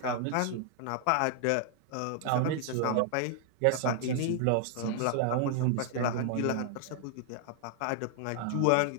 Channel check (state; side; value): different; both; correlation 0.00